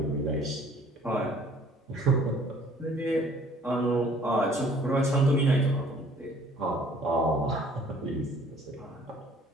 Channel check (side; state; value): both; normal; correlation 0.56